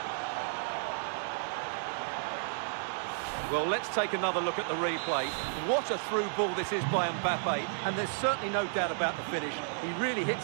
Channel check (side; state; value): left; silent; 56 dB below the other